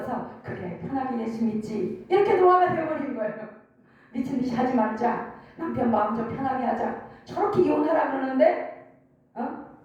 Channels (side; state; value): both; identical; correlation 1.00